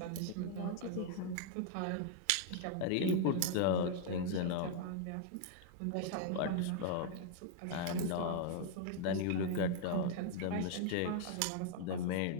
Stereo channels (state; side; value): different; both; correlation 0.00